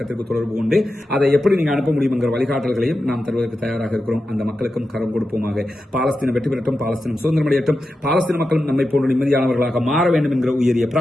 தொடர்பு கொண்டு அதை எப்படி நீங்க அனுப்ப முடியும் என்கிற வழிகாட்டல்களையும் நாம் தருவதற்கு தயாராக இருக்கிறோம். அந்த மக்களுக்கும் கரம் கொடுப்போமாக. பாலஸ்தீனம் வெற்றி பெறட்டும், பாலஸ்தீனம் சுதந்திரமடையட்டும், பாலஸ்தீன மக்களும் நம்மை போன்ற நிம்மதியானவர்களாக மாற வேண்டும் என்கிற உயரிய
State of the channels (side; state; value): both; normal; correlation 0.90